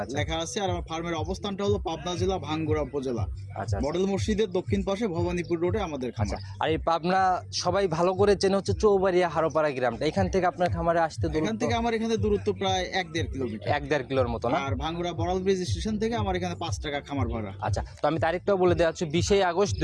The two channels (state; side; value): identical; both; correlation 1.00